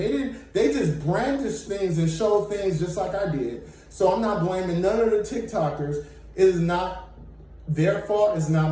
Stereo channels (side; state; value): both; identical; correlation 1.00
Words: just brandished things and showed things just like I did. So I'm not blaming none of the TikTokers. It is not their fault. It's